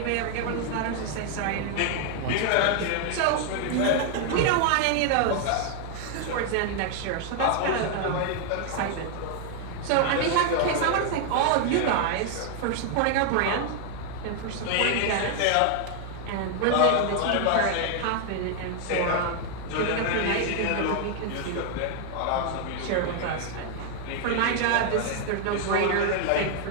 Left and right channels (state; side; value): different; both; correlation 0.00